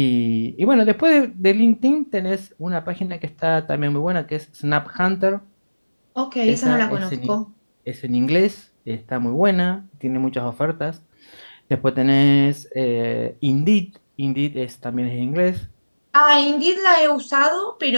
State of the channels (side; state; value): both; inverted; correlation -1.00